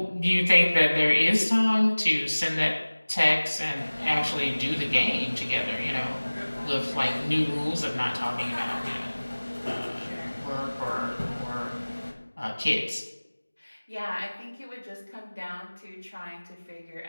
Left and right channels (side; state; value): both; inverted; correlation -1.00